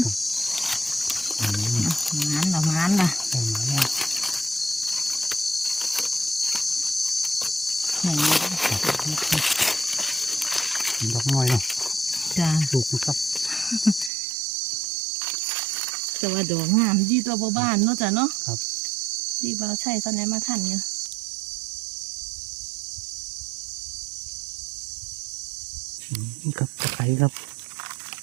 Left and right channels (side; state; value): left; drops out; at 14.1 s